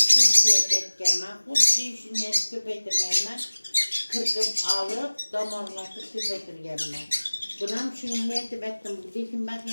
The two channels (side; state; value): both; inverted; correlation -1.00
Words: etkenler. Huddi işini et köpektirgenler. Kırkıp alıp damarlatıp köpektirgenler. Bunam şunu niyetip ettim. Dikim bak